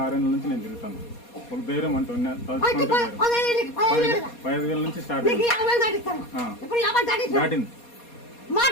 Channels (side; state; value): right; late; 4.2 ms